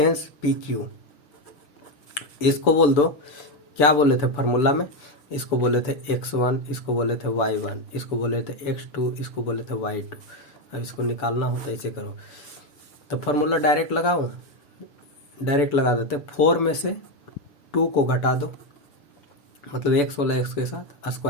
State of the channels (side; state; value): right; late; 6.9 ms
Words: PQ, इसको बोल दो, क्या बोले थे फार्मूला में, इसको बोले थे x1, इसको बोले थे y1, इसको बोले थे x2, इसको बोले थे y2। अब इसको निकालना हो तो ऐसे करो, तो फार्मूला डायरेक्ट लगाओ, डायरेक्ट लगा देते। 4 में से 2 को घटा दो, मतलब x वाला x के साथ